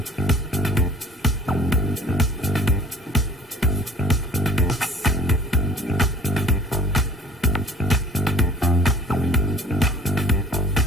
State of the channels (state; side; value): normal; both; correlation 0.50